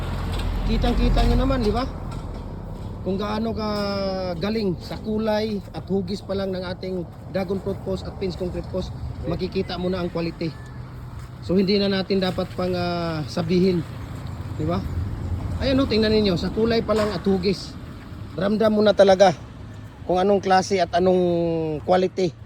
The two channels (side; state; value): both; identical; correlation 1.00